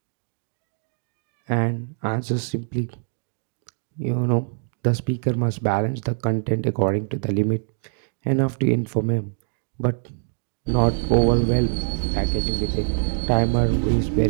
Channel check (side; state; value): left; silent; digital silence